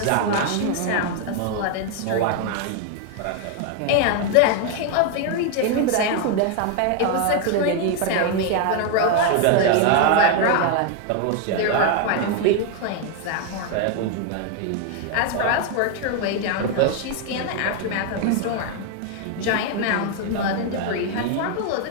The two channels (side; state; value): both; different; correlation 0.01